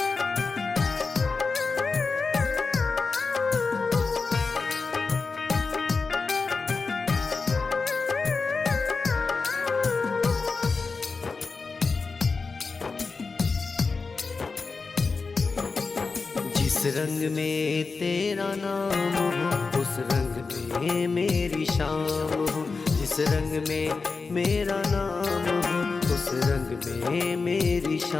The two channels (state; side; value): quieter; right; 4.4 dB